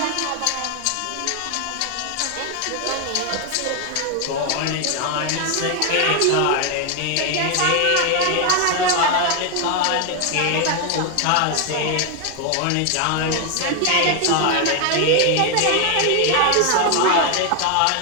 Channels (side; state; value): both; different; correlation 0.01